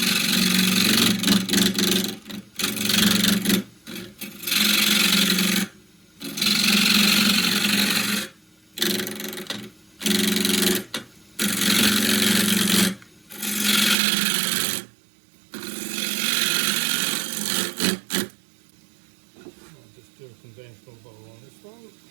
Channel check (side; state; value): left; drops out; at 14.0 s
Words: Do a conventional bowl on this one.